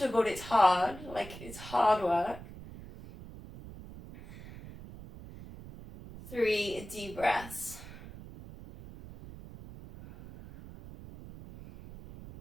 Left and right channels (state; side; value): noise; right; rumble, 15 dB below the sound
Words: it's hard, like it's hard work. 3 deep breaths.